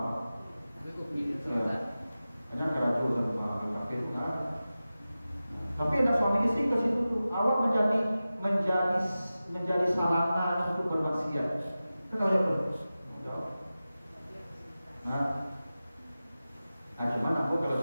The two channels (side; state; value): both; inverted; correlation -0.95